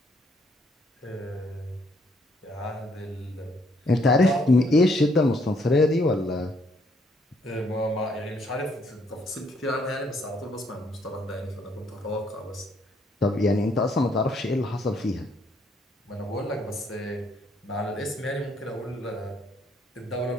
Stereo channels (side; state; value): both; normal; correlation 0.69